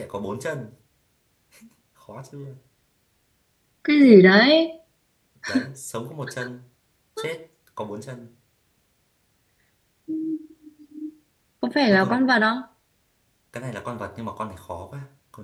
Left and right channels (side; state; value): both; identical; correlation 1.00